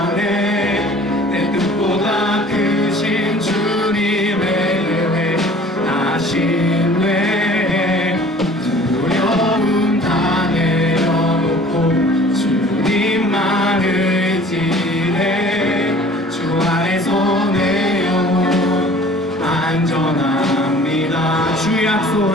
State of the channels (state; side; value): normal; both; correlation 0.49